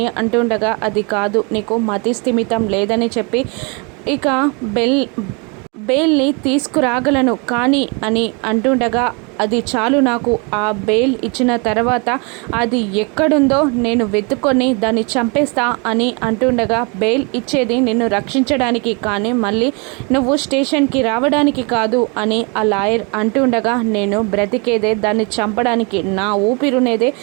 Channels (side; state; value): left; quieter; 32.1 dB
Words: అంటుండగా అది కాదు, నీకు మతి స్థిమితం లేదని చెప్పి ఇక బెయిల్ని తీసుకురాగలను కానీ అని అంటుండగా అది చాలు నాకు, ఆ బెయిల్ ఇచ్చిన తర్వాత అది ఎక్కడుందో నేను వెతుక్కొని దాన్ని చంపేస్తా అని అంటుండగా బెయిల్ ఇచ్చేది నిన్ను రక్షించడానికి కానీ మళ్ళీ నువ్వు స్టేషన్కి రావడానికి కాదు అని ఆ లాయర్ అంటుండగా నేను బ్రతికేదే దాన్ని చంపడానికి, నా ఊపిరునేదే